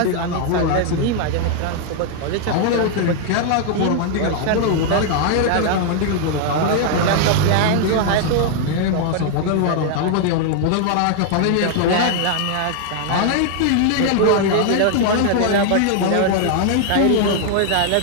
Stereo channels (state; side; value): different; both; correlation 0.00